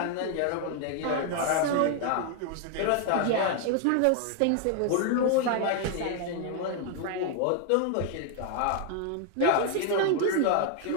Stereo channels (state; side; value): different; both; correlation 0.00